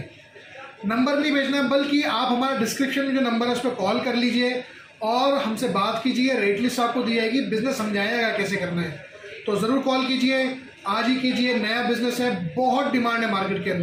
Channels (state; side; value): identical; both; correlation 1.00